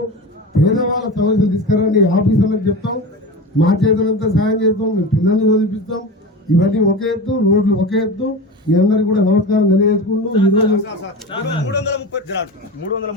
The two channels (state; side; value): normal; both; correlation 0.28